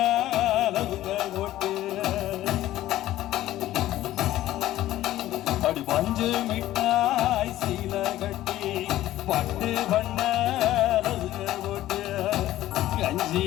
அளவுங்க ஓட்டு அடி பஞ்சு மிட்டாய் சீல கட்டி பட்டு வண்ண அளவுங்க ஓட்டு கஞ்சி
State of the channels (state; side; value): quieter; right; 14.5 dB